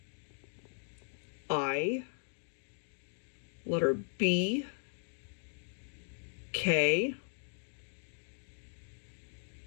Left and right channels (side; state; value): right; silent; 53 dB below the other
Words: I. Letter B. K.